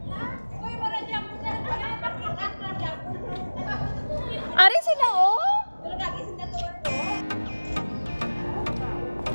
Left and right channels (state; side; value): inverted; both; correlation -1.00